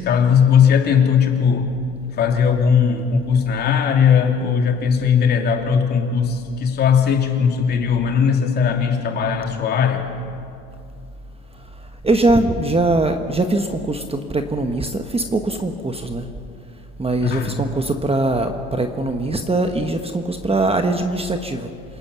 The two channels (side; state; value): right; quieter; 3.5 dB